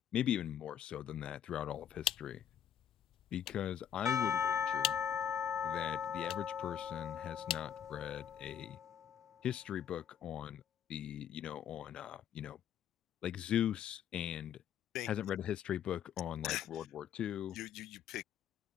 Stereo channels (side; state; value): right; quieter; 9.5 dB